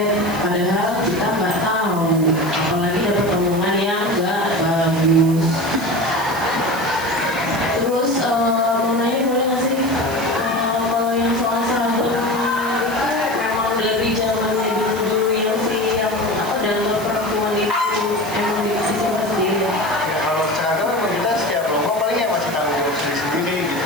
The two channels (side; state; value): right; noise; hiss, 15 dB below the sound